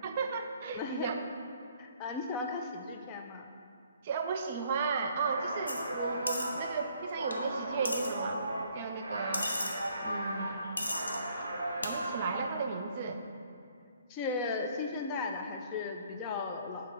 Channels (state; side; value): inverted; both; correlation -0.63